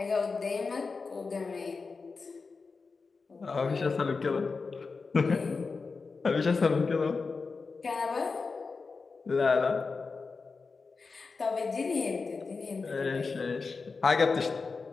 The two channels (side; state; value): right; quieter; 4.5 dB